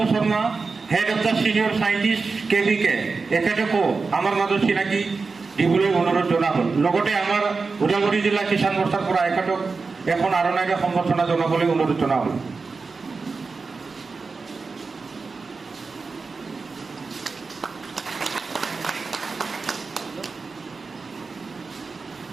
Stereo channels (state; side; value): quieter; left; 4.4 dB